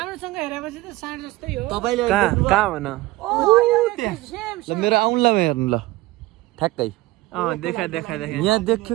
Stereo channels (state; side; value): quieter; left; 18.9 dB